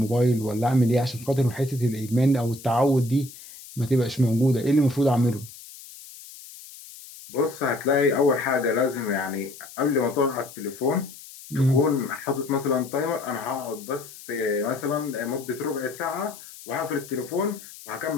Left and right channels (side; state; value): left; noise; hiss, 17 dB below the sound